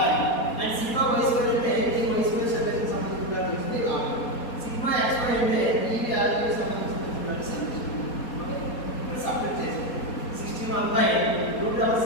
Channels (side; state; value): right; late; 4.2 ms